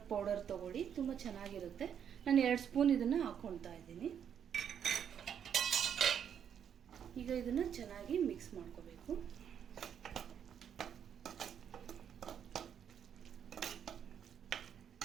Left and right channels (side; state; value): left; quieter; 8.5 dB